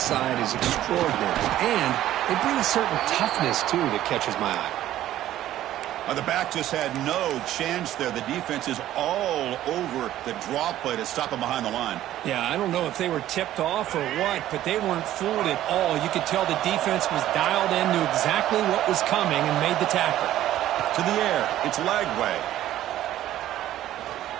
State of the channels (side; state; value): left; quieter; 13.2 dB